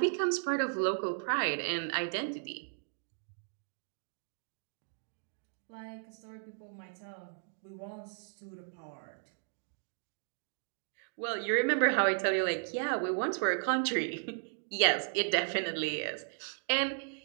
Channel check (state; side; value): silent; left; digital silence